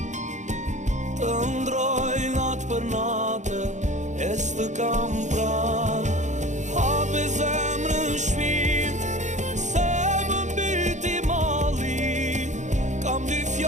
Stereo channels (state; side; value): late; left; 0.35 ms